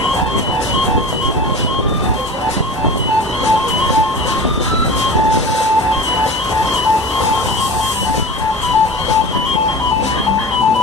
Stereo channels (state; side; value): normal; both; correlation 0.34